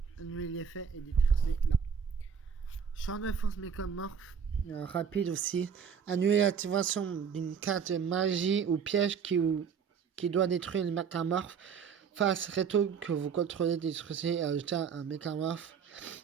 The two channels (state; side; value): quieter; left; 6.8 dB